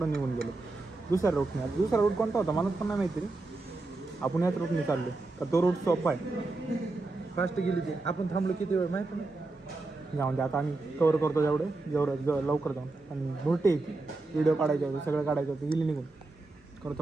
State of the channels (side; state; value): left; quieter; 3.2 dB